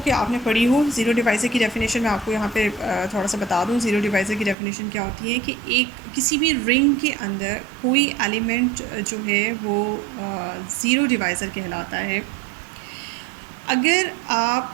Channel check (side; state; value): left; drops out; at 4.5 s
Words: आपने पढ़ी हो। ज़ीरो डिवाइज़र की डेफिनेशन मैं आपको यहाँ पे थोड़ा सा बता दूँ। ज़ीरो डिवाइज़र की डेफिनेशन क्या होती है कि एक किसी भी रिंग के अंदर कोई एलिमेंट जो है वो ज़ीरो डिवाइज़र कहलाता है अगर